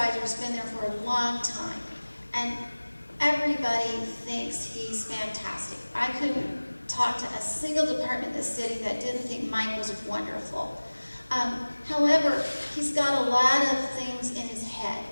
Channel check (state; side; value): inverted; both; correlation -1.00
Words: has been there for a long time, and everybody thinks he's fantastic. I couldn't talk to a single department in the city that didn't think Mike was wonderful. However, he's got a lot of things in his head,